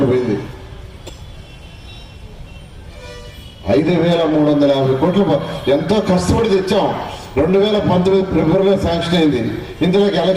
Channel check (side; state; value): both; identical; correlation 1.00